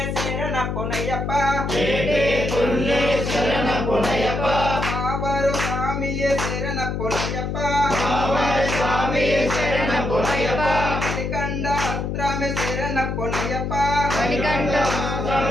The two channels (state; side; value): noise; left; hum, 2 dB below the sound